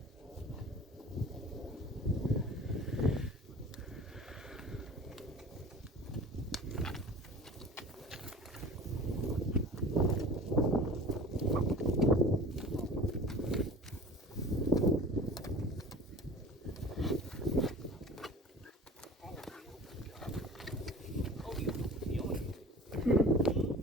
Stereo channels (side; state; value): both; normal; correlation 0.41